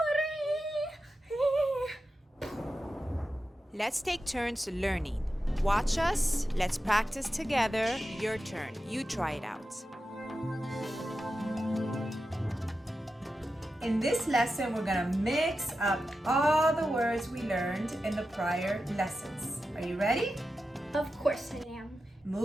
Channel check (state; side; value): normal; both; correlation 0.91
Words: Let's take turns learning. Watch us. Let's practice together. Your turn. You try it out. In this lesson, we're going to mix up all the words we learned in the prior lessons. Are you ready? Of course I am.